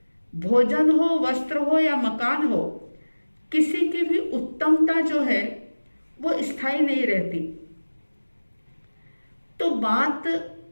भोजन हो, वस्त्र हो या मकान हो, किसी की भी उत्तमता जो है वो स्थायी नहीं रहती। तो बात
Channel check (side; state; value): both; inverted; correlation -1.00